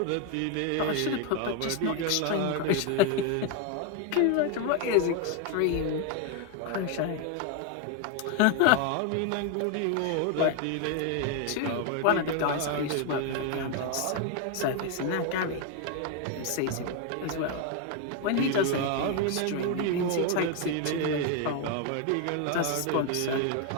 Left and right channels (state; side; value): different; both; correlation 0.01